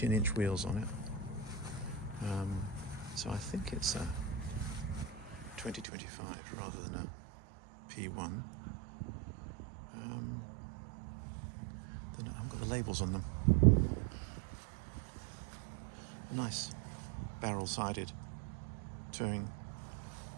wheels on it. So I think it's a 2025 rather than a P1. I've got the labels on them. Nice barrel-sided touring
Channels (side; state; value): left; drops out; at 5.9 s